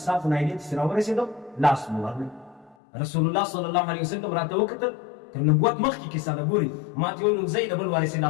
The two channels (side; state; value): right; drops out; at 2.8 s